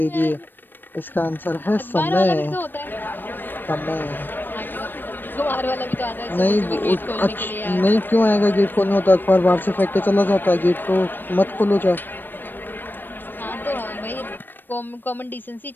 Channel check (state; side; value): late; right; 0.094 ms